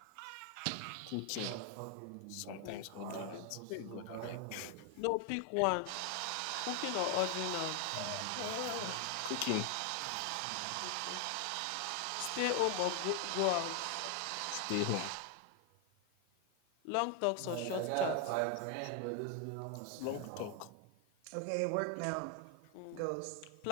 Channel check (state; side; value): different; both; correlation 0.01